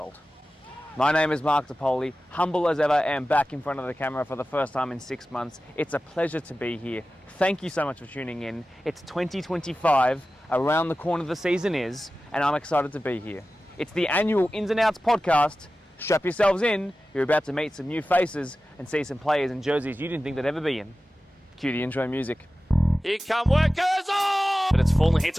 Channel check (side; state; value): both; normal; correlation 0.95